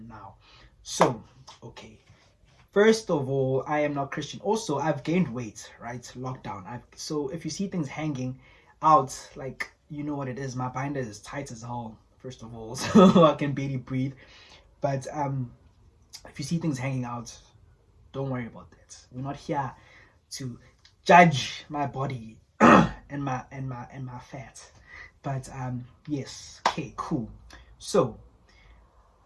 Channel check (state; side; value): identical; both; correlation 1.00